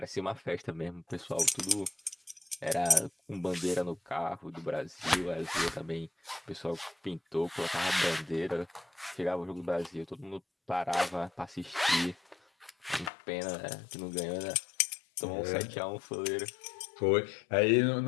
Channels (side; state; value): right; drops out; at 13.1 s